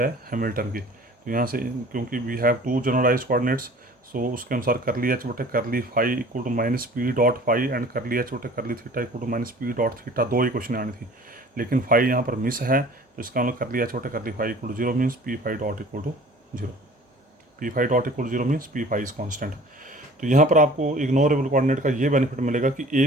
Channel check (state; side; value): normal; both; correlation 0.47